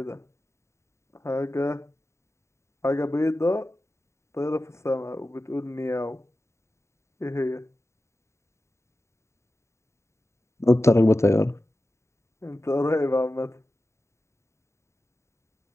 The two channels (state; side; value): late; right; 0.14 ms